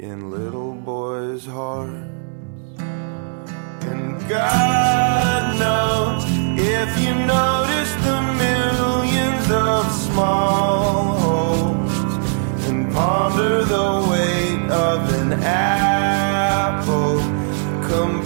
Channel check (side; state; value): left; silent; 66 dB below the other